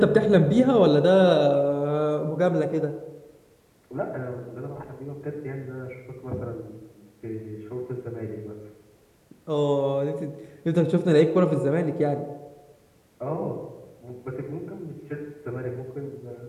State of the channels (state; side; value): identical; both; correlation 1.00